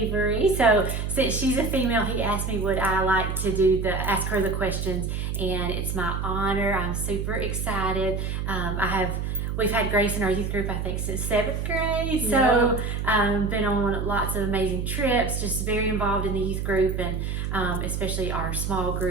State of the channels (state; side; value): noise; right; hum, 2 dB below the sound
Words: So since she's a female, he asked me would I like to ask her the questions, and it's my honor. I'm super excited. We've had Grace in our youth group, I think, since seventh grade. So been on lots of amazing trips, just very involved in the youth group, and especially our small